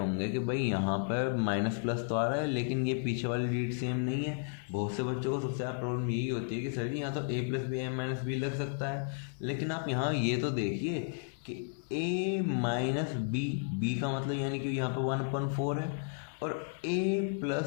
कि भाई यहाँ पर माइनस प्लस तो आ रहा है, लेकिन ये पीछे वाली रीड सेम नहीं है। बहुत से बच्चों को सबसे ज़्यादा प्रॉब्लम यही होती है कि सर जी यहाँ तो a + b a - b लग सकता है, लेकिन आप यहाँ ये तो देखिए कि a - b का मतलब यानी कि यहाँ पर 1/4 है, और a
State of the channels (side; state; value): right; silent; 56 dB below the other